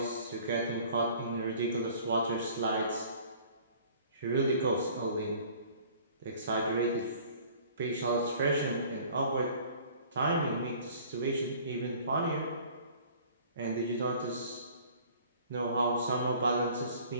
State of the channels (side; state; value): both; inverted; correlation -0.51